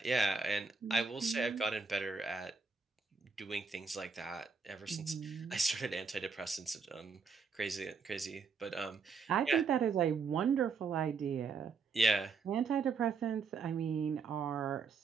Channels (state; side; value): quieter; left; 5.1 dB